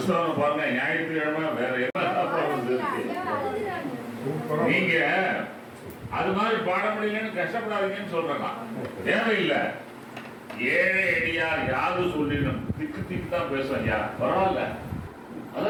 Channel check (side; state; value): both; identical; correlation 1.00